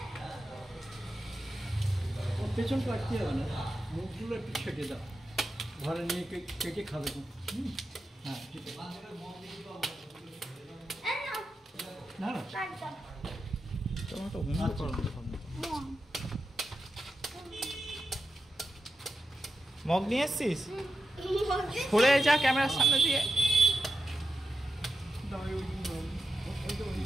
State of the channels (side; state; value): both; normal; correlation 0.89